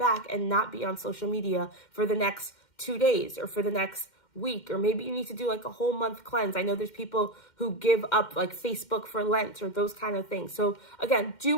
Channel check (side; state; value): right; late; 2.1 ms